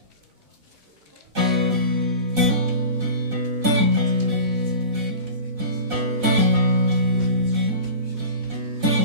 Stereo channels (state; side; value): late; left; 4.0 ms